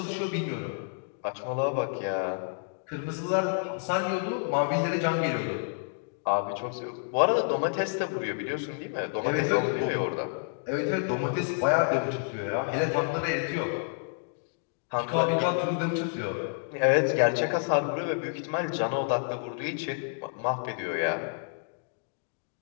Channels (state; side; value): silent; right; digital silence